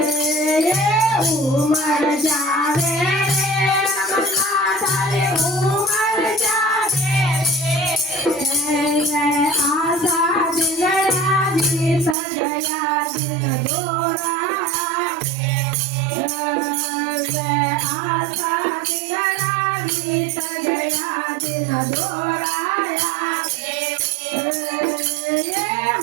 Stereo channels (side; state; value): left; drops out; at 12.2 s